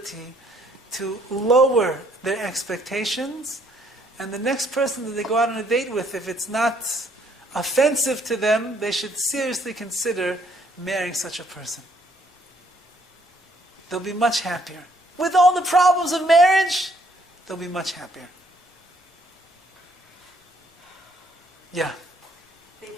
to lower their expectations. And the next person that they go out on a date with, if it's not offensive to them, they should seriously consider marrying such a person. They'll be much happier. With all the problems of marriage, they'll be much happier. Yeah.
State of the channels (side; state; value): both; normal; correlation 0.66